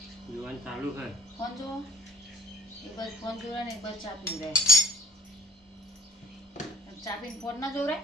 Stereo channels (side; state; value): both; normal; correlation 0.52